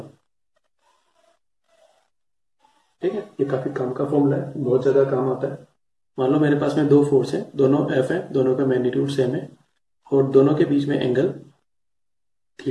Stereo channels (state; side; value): identical; both; correlation 1.00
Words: ठीक है, ये काफी काम का फॉर्मूला है, बहुत ज्यादा काम आता है। मान लो मेरे पास में दो फोर्स हैं, दोनों F है, दोनों का मैग्नीट्यूड सेम है और दोनों के बीच में एंगल